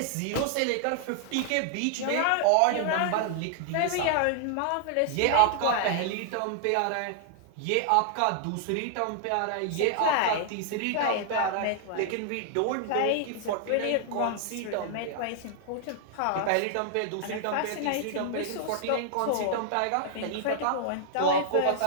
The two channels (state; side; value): different; both; correlation -0.01